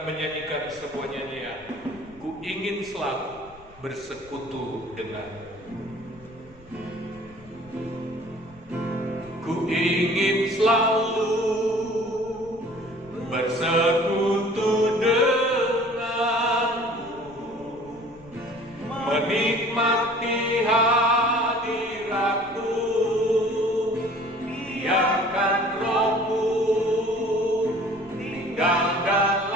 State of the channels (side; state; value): left; noise; rumble, 24 dB below the sound